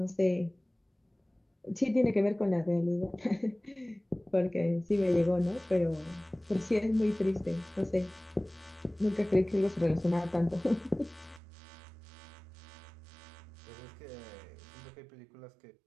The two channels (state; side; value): drops out; left; at 11.4 s